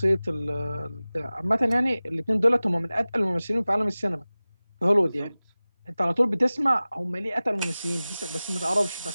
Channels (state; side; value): inverted; both; correlation -0.98